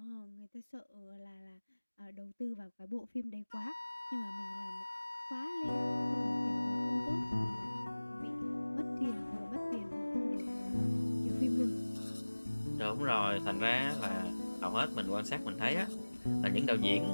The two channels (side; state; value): both; inverted; correlation -1.00